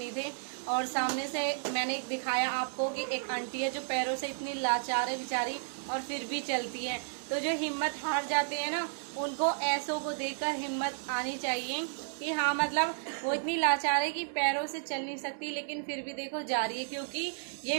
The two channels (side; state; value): left; silent; digital silence